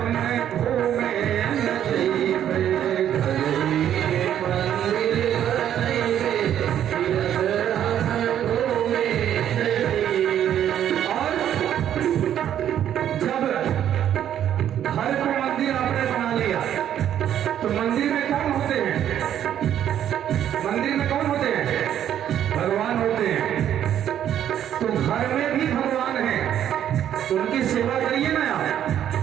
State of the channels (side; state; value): left; quieter; 10.4 dB